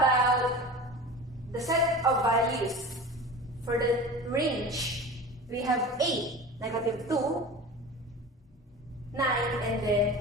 the set of values for the range? We have 8, -2, 9, and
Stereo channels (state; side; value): normal; both; correlation 0.34